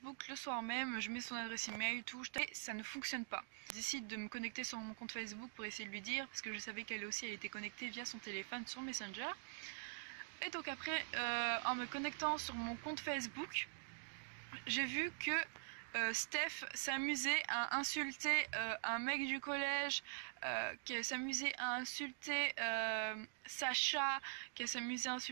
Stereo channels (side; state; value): left; silent; digital silence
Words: le soir même, je mets son adresse email, tout, et ça ne fonctionne pas. Je décide de me connecter sur mon compte Facebook pour essayer de lui dire, parce que je savais qu'elle aussi elle était connectée via son téléphone sur Messenger. Et donc après, en me connectant sur mon compte Facebook, j'ai vu que Steph s'amusait à insulter un mec du collège, qui s'amusait à insulter Sacha, qui s'amusait à